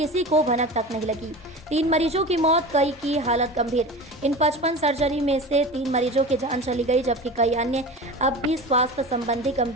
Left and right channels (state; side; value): normal; both; correlation 0.32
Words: को भनक तक नहीं लगी। 3 मरीजों की मौत, कई की हालत गंभीर। इन 55 सर्जरी में से 3 मरीजों की जान चली गई जबकि कई अन्य अब भी स्वास्थ्य संबंधी